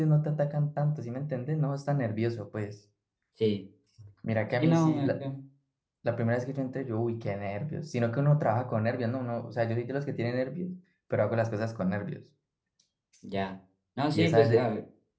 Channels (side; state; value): both; identical; correlation 1.00